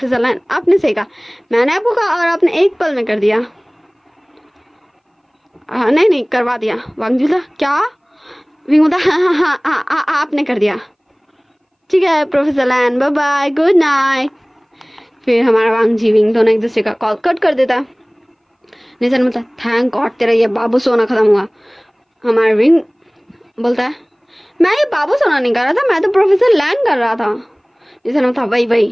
लैन आपने सही कहा, मैंने आपको कहा और आपने एक पल में कर दिया। नहीं करवा दिया। वांग जी बोलता क्या। विंग बोलता हाँ आपने कर दिया, ठीक है प्रोफेसर लैन बाय बाय गुड नाइट। फिर हमारा वांग जी विंग दोनों एक दूसरे का कॉल कट कर देता। निशन बोलता थैंक गॉड तेरा ये बाबू सोना खत्म हुआ। हमारा विंग बोलता है मैं ये बाबू सोना नहीं कर रहा था, मैं तो प्रोफेसर लैन कर रहा था। निशन बोलता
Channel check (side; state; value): both; identical; correlation 1.00